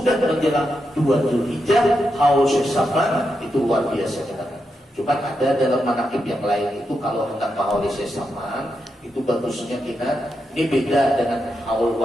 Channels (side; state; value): both; normal; correlation 0.85